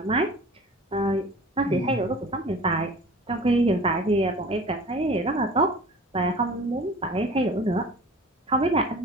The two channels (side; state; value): both; normal; correlation 0.41